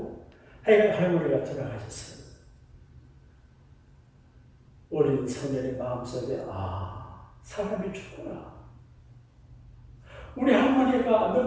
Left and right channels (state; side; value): identical; both; correlation 1.00